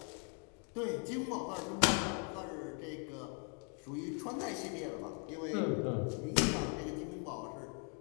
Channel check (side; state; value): right; quieter; 39.9 dB